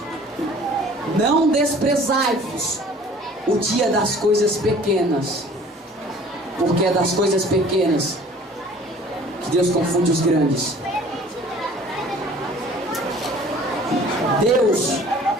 Não desprezai-vos o dia das coisas pequenas, porque é das coisas pequenas que Deus confunde os grandes. Deus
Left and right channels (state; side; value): normal; both; correlation 0.49